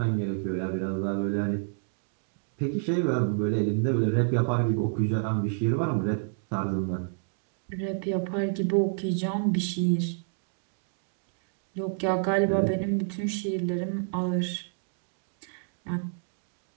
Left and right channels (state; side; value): silent; left; digital silence